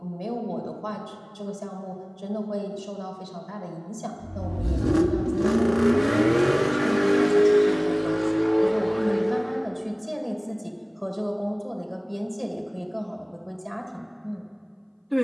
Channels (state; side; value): identical; both; correlation 1.00